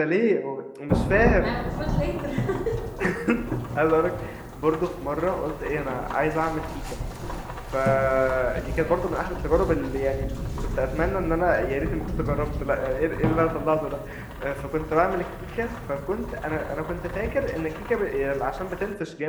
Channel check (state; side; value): identical; both; correlation 1.00